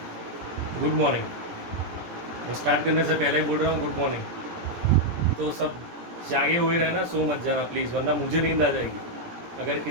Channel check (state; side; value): late; left; 17 ms